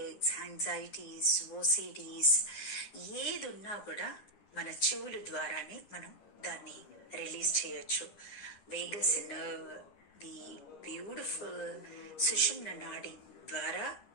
anxieties, OCDs ఏది ఉన్నా కూడా మన చెవుల ద్వారానే మనం దాన్ని రిలీజ్ చేయొచ్చు. వేగస్ నర్వ్, ది బ్యూటిఫుల్ సుషుమ్న నాడి ద్వారా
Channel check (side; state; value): right; late; 9.8 ms